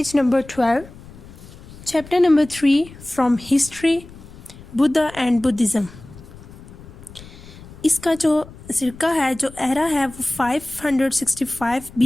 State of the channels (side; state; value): left; noise; rumble, 18 dB below the sound